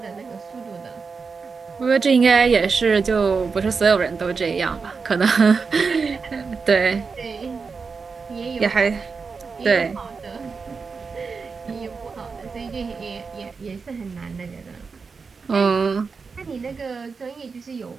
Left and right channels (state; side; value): quieter; left; 5.0 dB